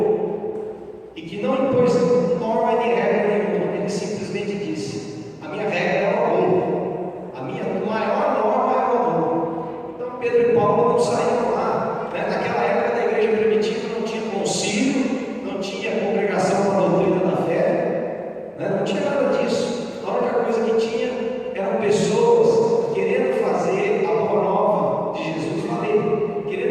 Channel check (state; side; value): identical; both; correlation 1.00